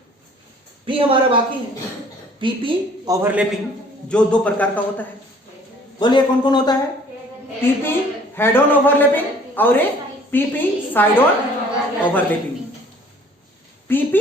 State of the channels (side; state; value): both; normal; correlation 0.55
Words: पी हमारा बाकी है, पीपी ओवरलैपिंग, जो दो प्रकार का होता है। बोलिए कौन कौन होता है? पीपी हेड ऑन ओवरलैपिंग और एक PP side on overlapping.